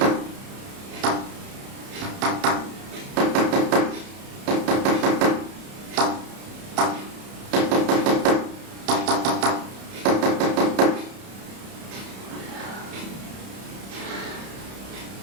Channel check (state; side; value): late; left; 30 ms